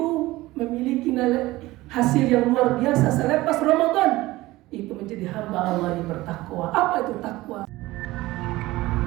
memiliki hasil yang luar biasa selepas Ramadan. Itu menjadi hamba Allah yang bertakwa. Apa itu takwa?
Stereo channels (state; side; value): quieter; left; 18.5 dB